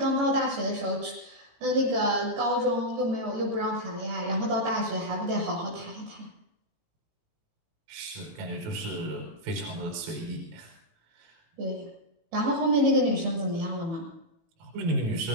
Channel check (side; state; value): left; late; 18 ms